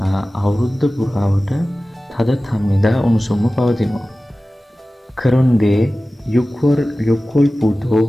අවුරුද්ද පුරාවට තද තම්නිදා උණුසුම්ම පවතිනවා. කරුන්දේ යොක්කොල් පුතෝ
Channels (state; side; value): normal; both; correlation 0.96